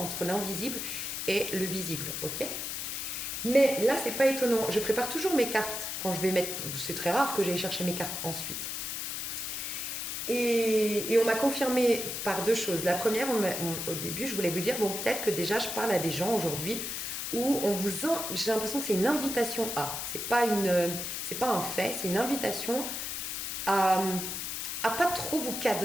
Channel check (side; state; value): left; noise; hiss, 4 dB below the sound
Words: l'invisible et le visible, ok? Mais là, c'est pas étonnant. Je prépare toujours mes cartes quand je vais mettre... C'est très rare que j'aille chercher mes cartes ensuite. Et on m'a confirmé par 2 choses. La première, au début, je voulais vous dire, bon, peut-être que déjà, je parle à des gens aujourd'hui où j'ai l'impression que c'est une invitation à. C'est pas un fait, c'est une invitation à pas trop vous